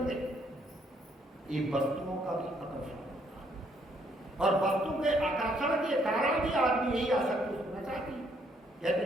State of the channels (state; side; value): normal; both; correlation 0.69